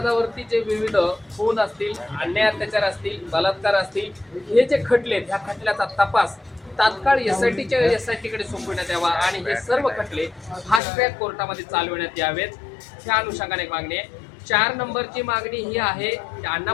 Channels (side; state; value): right; drops out; at 10.8 s